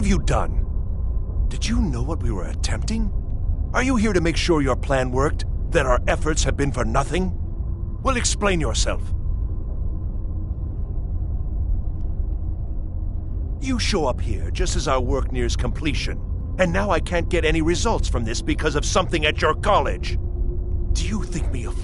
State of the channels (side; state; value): both; identical; correlation 1.00